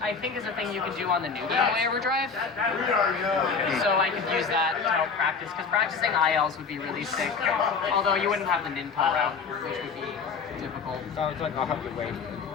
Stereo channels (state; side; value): quieter; right; 5.3 dB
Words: think is a thing you can do on the new Game Boy Overdrive. So I could use that to help practice, because practicing ILs would be really sick. Although you wouldn't have the Ninpo route, which would be difficult. Sounds like I'll have to wait